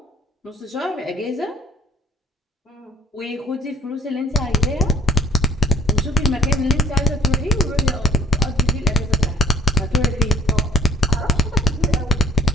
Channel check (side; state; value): both; normal; correlation 0.62